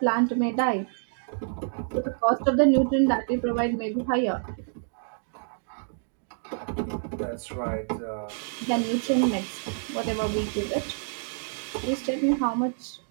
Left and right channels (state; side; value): silent; left; digital silence